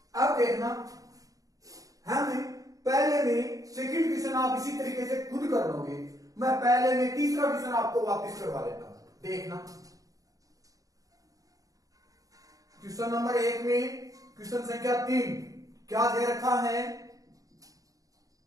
अब देखना हम पहले में सेकंड क्वेश्चन आप इसी तरीके से खुद कर लोगे, मैं पहले में तीसरा क्वेश्चन आपको वापस करवा देता हूं। देखना क्वेश्चन नंबर 1 में क्वेश्चन संख्या 3 क्या दे रखा है,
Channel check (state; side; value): late; left; 0.17 ms